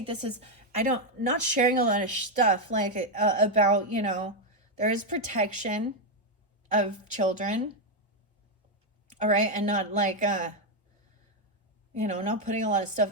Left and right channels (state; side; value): normal; both; correlation 0.03